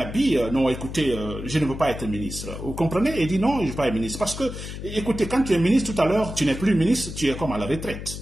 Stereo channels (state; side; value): noise; left; hum, 9 dB below the sound